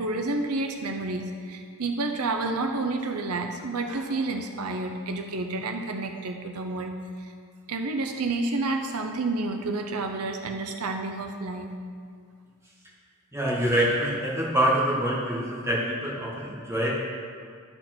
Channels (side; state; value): both; normal; correlation 0.38